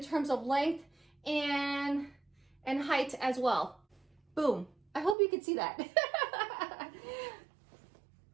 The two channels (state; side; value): drops out; left; at 5.2 s